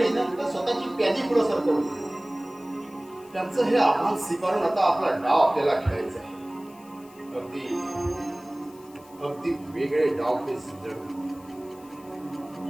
स्वतःची प्यादी पुढे सरकवली. त्यांचं हे आव्हान स्वीकारून आता आपला डाव आपल्याला खेळायचा आहे. अगदी वेगळे डाव ते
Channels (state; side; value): noise; left; hiss, 25 dB below the sound